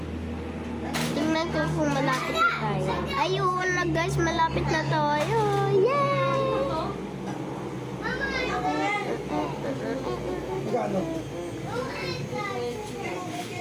Tingnan ko kung malapit na tayo. Ayun na guys, malapit na tayo. Yay!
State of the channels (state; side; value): identical; both; correlation 1.00